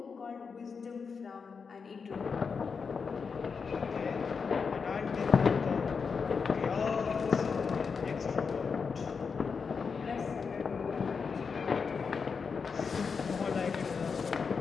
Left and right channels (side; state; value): right; quieter; 5.5 dB